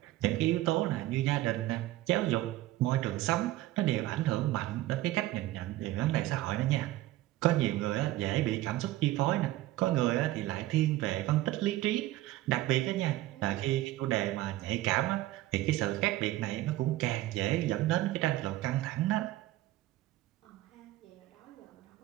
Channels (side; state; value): left; quieter; 16.1 dB